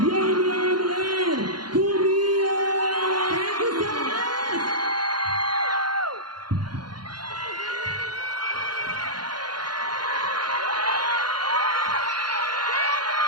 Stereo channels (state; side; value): late; left; 0.71 ms